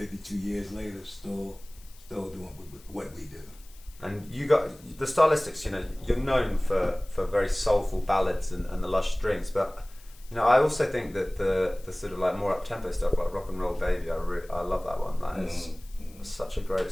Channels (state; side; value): noise; left; hiss, 24 dB below the sound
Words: years later, still doing what we do. And you got the Stylistics, you know, you're known for very soulful ballads and the lush strings, but you know, I also think that the sort of like more up-tempo stuff, like Rock and Roll Baby, I love that one. That is such a great